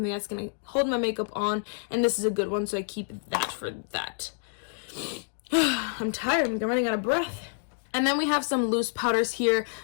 that's going to hold my makeup on, and this is a good one, so I keep that for that. I'm tired. I'm running out of breath. And then we have some loose powders here.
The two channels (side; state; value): right; silent; digital silence